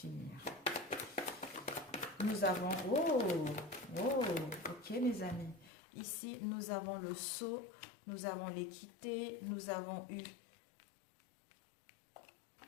Nous avons... Oh, ok mes amis. Ici, nous avons le sceau, nous avons l'équité, nous avons eu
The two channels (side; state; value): right; drops out; at 5.7 s